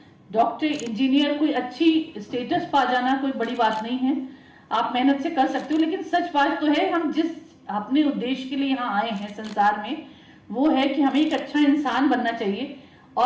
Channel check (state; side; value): identical; both; correlation 1.00